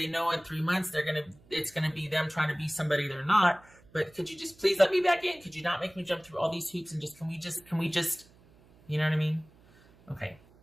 know in 3 months it's gonna be them trying to be somebody they're not. But could you just please let me back in? Could you not make me jump through all these hoops, and can we just, you know what I mean? Okay,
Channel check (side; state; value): right; noise; hum, 27 dB below the sound